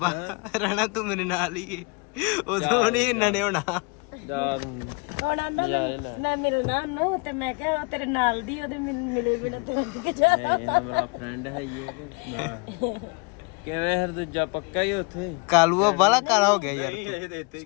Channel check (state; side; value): quieter; right; 31.0 dB